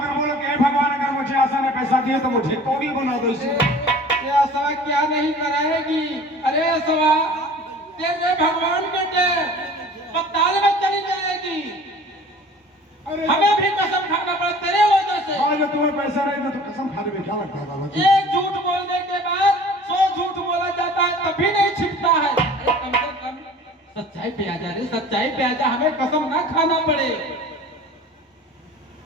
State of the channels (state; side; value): normal; both; correlation 0.45